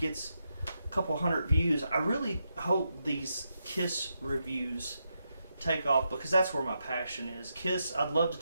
a couple hundred views, I really hope these Kiss reviews take off, because that's where my passion is. Kiss, I'd love to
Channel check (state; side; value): inverted; both; correlation -0.84